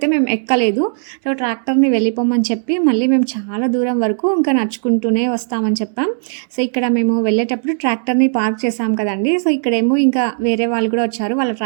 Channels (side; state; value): left; silent; digital silence